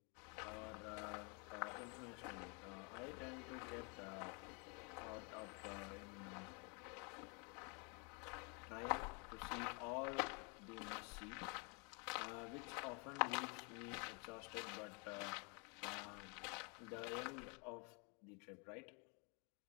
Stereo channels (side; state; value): right; quieter; 34.4 dB